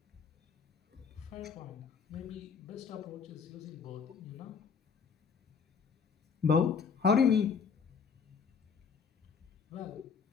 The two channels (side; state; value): right; quieter; 6.0 dB